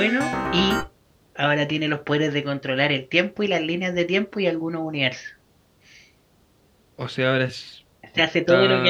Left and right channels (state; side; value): identical; both; correlation 1.00